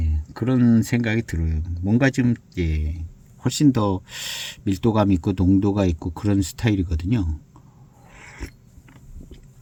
그런 생각이 들어요. 뭔가 좀 예, 훨씬 더 밀도감 있고 농도가 있고 그런 스타일이거든요.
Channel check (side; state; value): both; identical; correlation 1.00